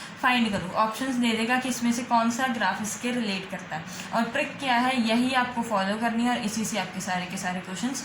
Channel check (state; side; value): identical; both; correlation 1.00